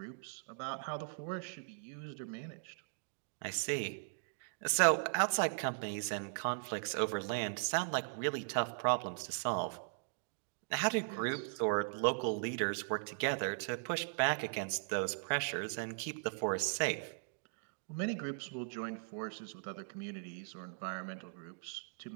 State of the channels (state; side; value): silent; left; digital silence